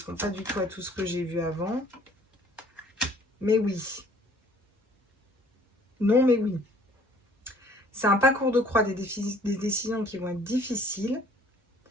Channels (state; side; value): normal; both; correlation 0.56